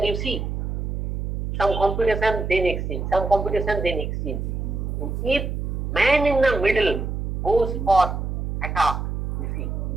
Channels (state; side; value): noise; right; hum, 3 dB below the sound